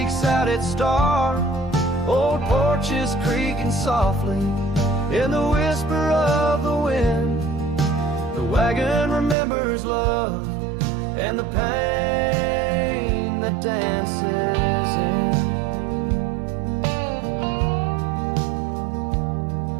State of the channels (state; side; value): drops out; left; at 9.3 s